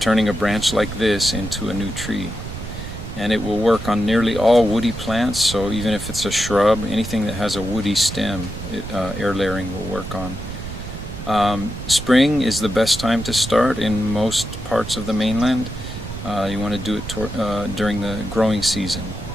a branch like this into a new tree. And it will work on nearly all woody plants, so even if it's a shrub, anything that has a woody stem, air layering will work on. Spring is the best time to start in most parts of the mainland. You want to do it during the growing season.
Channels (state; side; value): noise; right; rumble, 10 dB below the sound